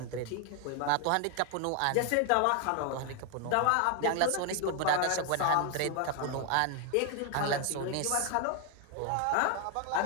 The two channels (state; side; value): different; both; correlation 0.01